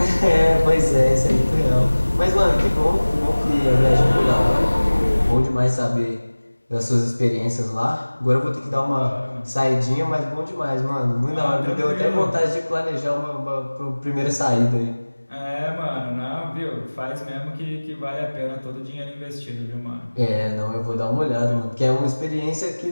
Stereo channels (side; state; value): both; inverted; correlation -1.00